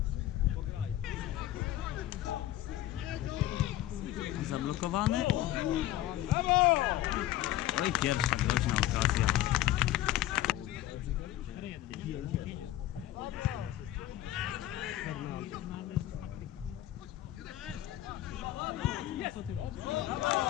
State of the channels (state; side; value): quieter; right; 14.3 dB